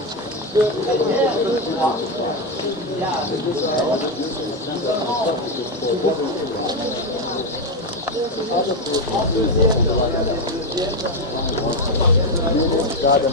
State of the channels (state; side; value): normal; both; correlation 0.08